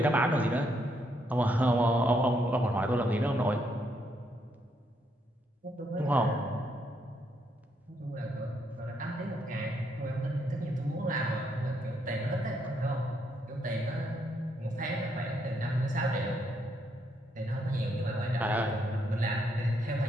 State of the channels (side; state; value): both; normal; correlation 0.75